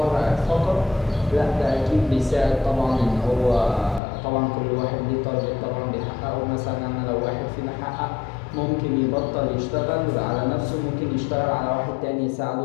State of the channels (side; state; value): right; drops out; at 4.0 s